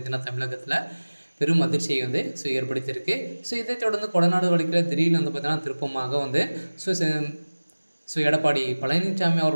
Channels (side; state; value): both; inverted; correlation -1.00